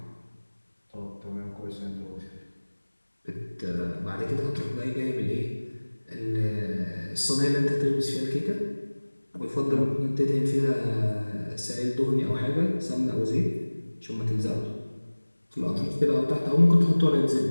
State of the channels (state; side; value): inverted; both; correlation -1.00